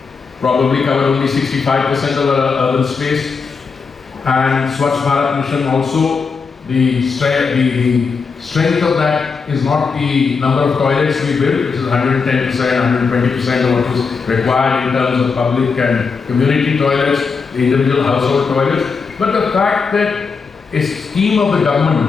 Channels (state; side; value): quieter; right; 5.2 dB